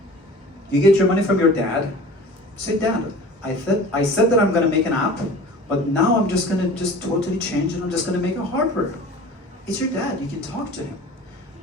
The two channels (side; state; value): both; normal; correlation 0.41